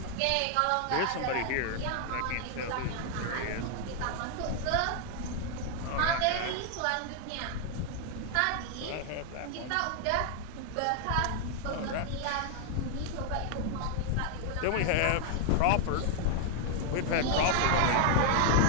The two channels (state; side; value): different; both; correlation 0.00